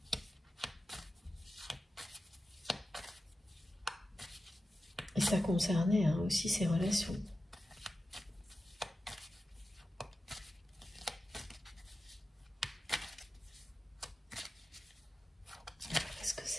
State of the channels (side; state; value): both; normal; correlation 0.92